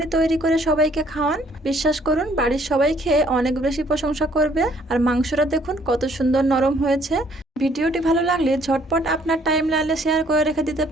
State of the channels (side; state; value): both; normal; correlation 0.62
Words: তৈরি করে সবাইকে খাওয়ান। বিশ্বাস করুন, বাড়ির সবাই খেয়ে অনেক বেশি প্রশংসা করবে। আর মাংসটা দেখুন কত সুন্দর নরম হয়েছে। ভিডিওটি ভালো লাগলে ঝটপট আপনার টাইম লাইনে শেয়ার করে রেখে দিতে